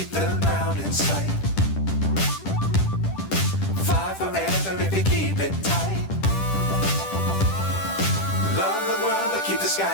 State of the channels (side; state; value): right; late; 10 ms